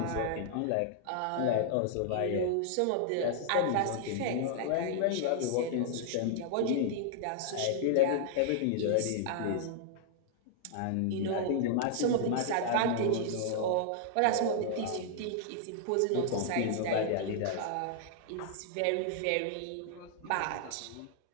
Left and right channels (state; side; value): different; both; correlation -0.01